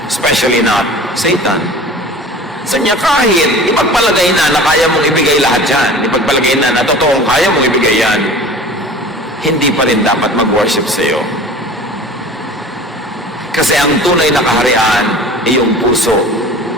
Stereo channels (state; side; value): normal; both; correlation 0.41